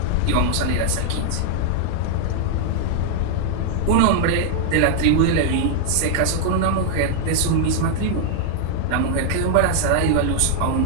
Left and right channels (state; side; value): different; both; correlation -0.01